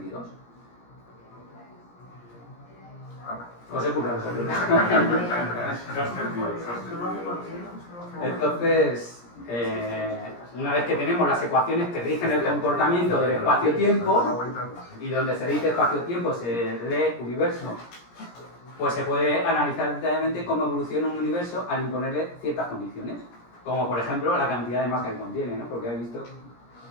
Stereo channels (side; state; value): right; late; 17 ms